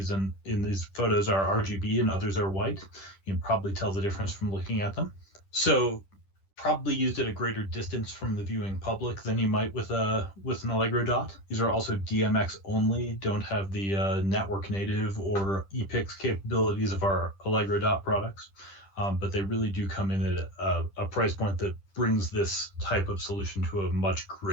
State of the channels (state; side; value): late; right; 10 ms